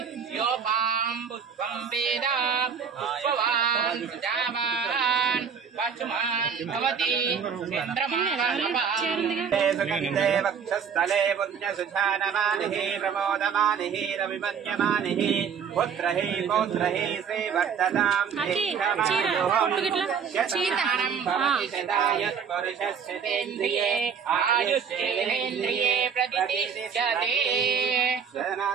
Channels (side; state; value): left; quieter; 6.9 dB